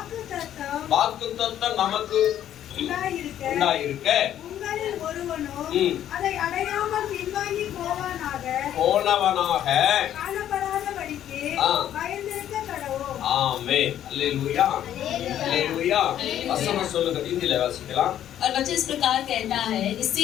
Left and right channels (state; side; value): quieter; right; 11.1 dB